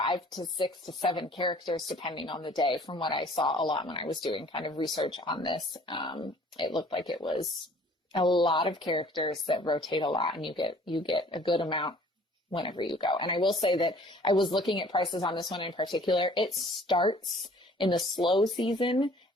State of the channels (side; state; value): both; normal; correlation 0.53